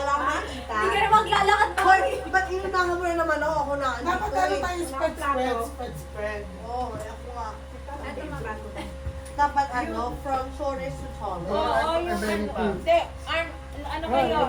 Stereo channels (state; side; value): identical; both; correlation 1.00